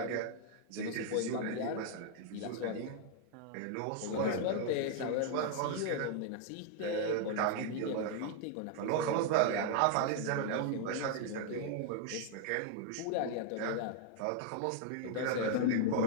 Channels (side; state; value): both; different; correlation 0.00